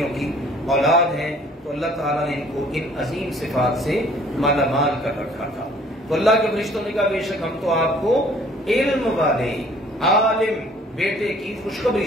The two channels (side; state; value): both; normal; correlation 0.56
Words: کی اولاد ہیں، تو اللہ تعالیٰ نے ان کو ان عظیم صفات سے مالا مال کر رکھا تھا۔ تو اللہ کے فرشتوں نے کہا بے شک ہم تو آپ کو علم والے، عالم بیٹے کی